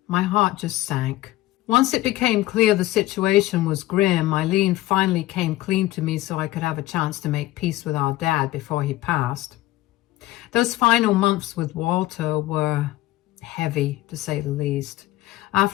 my heart just sank. Once it became clear the situation was grim, Eileen finally came clean to me so I could have a chance to make peace with our dad before he passed. Those final months with Walter were heavy, to say the least.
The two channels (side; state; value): right; quieter; 16.7 dB